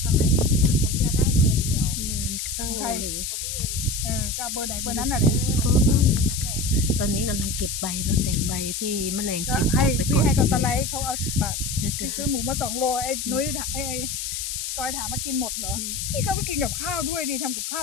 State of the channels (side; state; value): left; noise; hiss, 4 dB below the sound